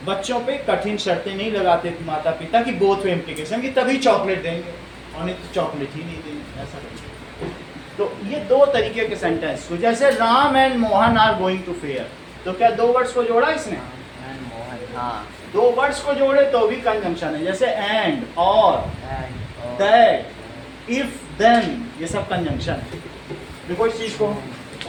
बच्चों पे कठिन शर्तें नहीं लगाते माता पिता की बोथ वे इम्प्लीकेशन की, तभी चॉकलेट देंगे, और नहीं तो चॉकलेट ही नहीं देंगे, ऐसा नहीं। तो ये दो तरीके के सेंटेंस, तो जैसे Ram and Mohan are going to fair, तो क्या दो वर्ड्स को जोड़ा इसने? हाँ, दो वर्ड्स को जोड़े तो भी कंजंक्शन है, जैसे एंड, और, दैट, इफ, देन, ये सब कंजंक्शन है। देखो इस चीज को,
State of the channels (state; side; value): identical; both; correlation 1.00